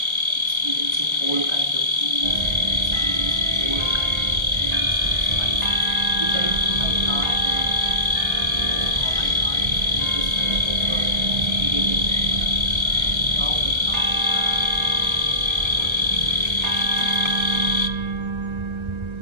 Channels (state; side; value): late; left; 1.3 ms